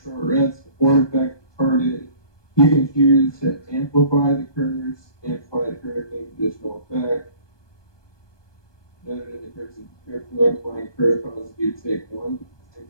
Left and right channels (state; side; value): late; right; 1.2 ms